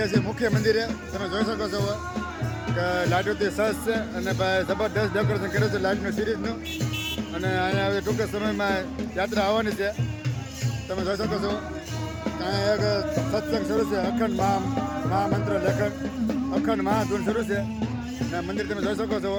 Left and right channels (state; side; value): identical; both; correlation 1.00